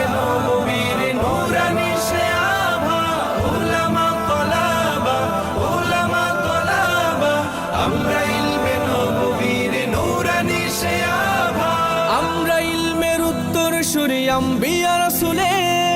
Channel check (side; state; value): both; identical; correlation 1.00